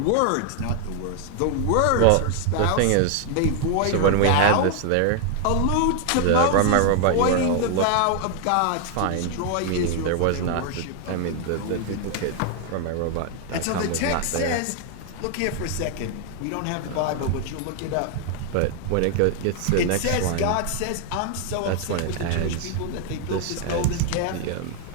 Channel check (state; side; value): different; both; correlation 0.00